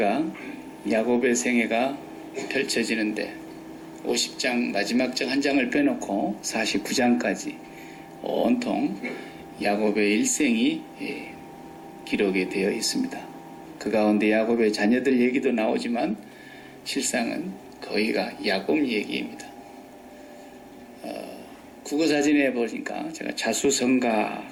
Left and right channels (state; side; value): identical; both; correlation 1.00